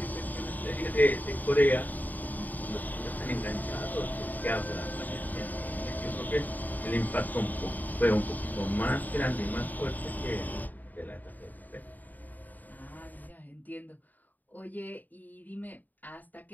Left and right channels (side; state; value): right; late; 0.084 ms